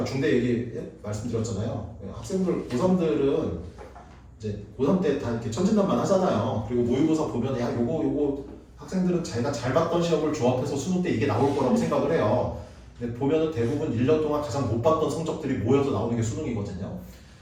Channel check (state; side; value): identical; both; correlation 1.00